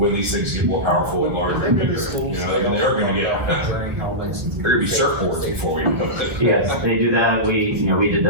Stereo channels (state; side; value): late; left; 1.5 ms